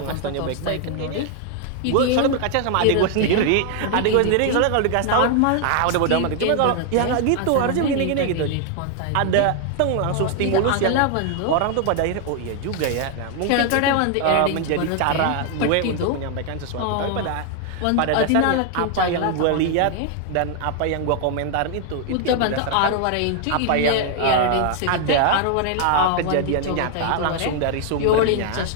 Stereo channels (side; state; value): both; different; correlation 0.00